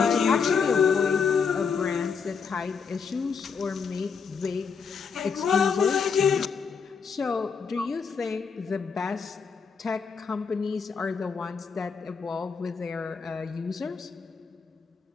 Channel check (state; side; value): quieter; right; 5.8 dB